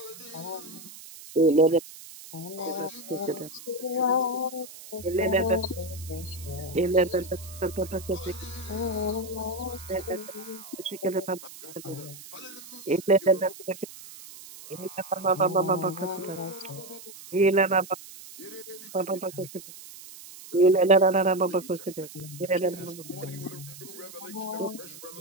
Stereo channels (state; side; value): noise; right; hiss, 16 dB below the sound